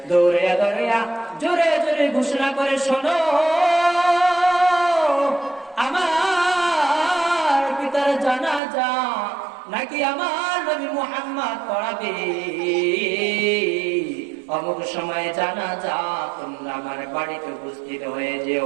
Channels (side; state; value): left; drops out; at 8.6 s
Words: দৌড়াইয়া দৌড়াইয়া জোরে জোরে ঘোষণা করে, শোনো আমার পিতার জানাজা নাকি আমার নবী মুহাম্মদ পড়াবে, অমুক সময় জানাজা, তোমরা আমার বাড়িতে উপস্থিত হয়ে